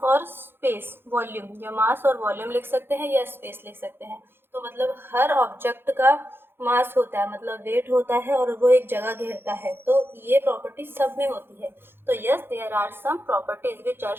और स्पेस वॉल्यूम, या मास और वॉल्यूम लिख सकते हैं या स्पेस लिख सकते हैं। तो मतलब हर ऑब्जेक्ट का मास होता है, मतलब वेट होता है, और वो एक जगह घेरता है। तो ये प्रॉपर्टी सब में होती है। तो yes, there are some properties which are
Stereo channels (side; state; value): left; late; 0.10 ms